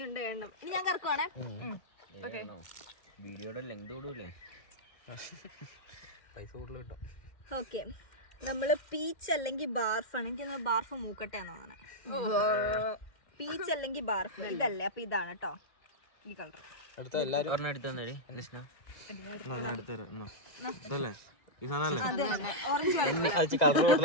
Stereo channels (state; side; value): late; right; 2.1 ms